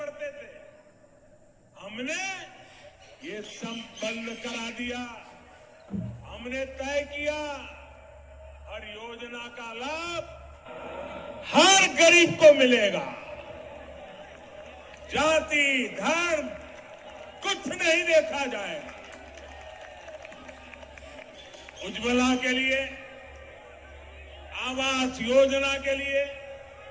थे। हमने ये सब बंद करा दिया। हमने तय किया हर योजना का लाभ हर गरीब को मिलेगा। जाति धर्म कुछ नहीं देखा जाएगा। उज्ज्वला के लिए, आवास योजना के लिए,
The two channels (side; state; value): both; identical; correlation 1.00